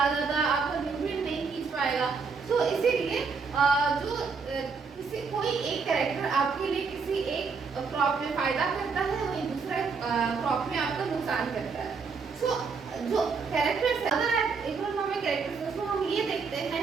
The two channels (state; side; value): quieter; left; 5.1 dB